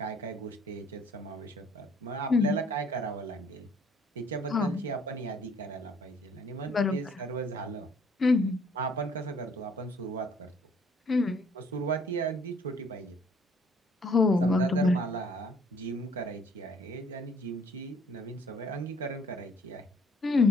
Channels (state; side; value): normal; both; correlation 0.59